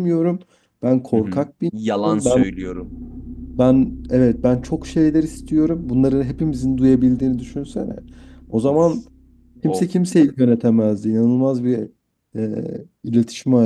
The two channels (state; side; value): identical; both; correlation 1.00